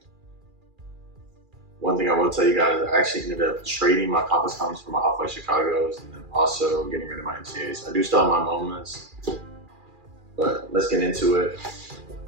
One thing I will tell you guys, I actually ended up trading my complex cons for my Off-White Chicago's and then also getting rid of my MCAs. I do still have my MoMAs, but let's get into it.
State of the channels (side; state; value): left; late; 2.4 ms